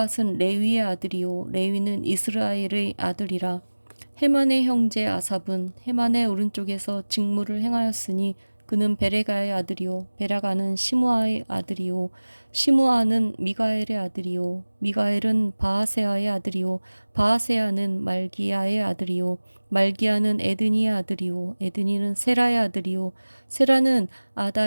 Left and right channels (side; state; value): both; inverted; correlation -1.00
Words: 레위의 아들이요 레위는 이스라엘의 아들이라. 헤만의 형제 아삽은 헤만의 오른쪽에서 직무를 행하였으니 그는 베레가의 아들이요 베라가는 시므아의 아들이요 시므아는 미가엘의 아들이요 미가엘은 바하세아의 아들이요 바하세아는 말기야의 아들이요 말기야는 에드니의 아들이요 에드니는 세라의 아들이요 세라는